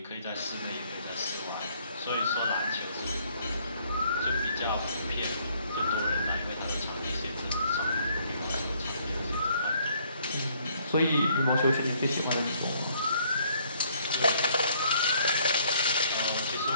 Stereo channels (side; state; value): both; inverted; correlation -0.65